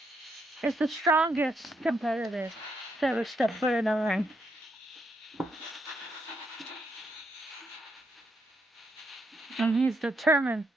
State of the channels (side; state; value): both; normal; correlation 0.78